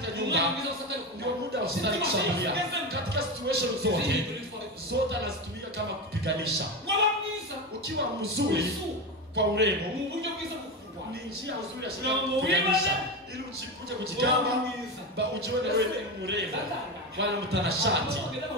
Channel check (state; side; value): normal; both; correlation 0.19